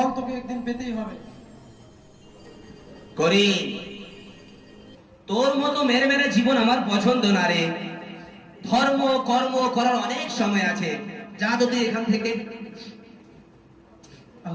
তোকে একদিন পেতেই হবে। করি, তোর মতো মেরে মেরে জীবন আমার পছন্দ না রে। ধর্ম কর্ম করার অনেক সময় আছে, যা তো তুই এখান থেকে।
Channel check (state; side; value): identical; both; correlation 1.00